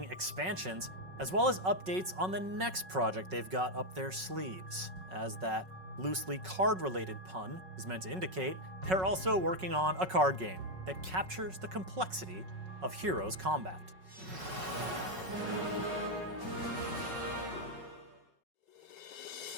expansions, as well as updates on the next project they've got up their sleeves. As that loosely card-related pun is meant to indicate, they're also working on a card game that captures the complexity of Heroes combat.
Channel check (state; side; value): late; left; 5.4 ms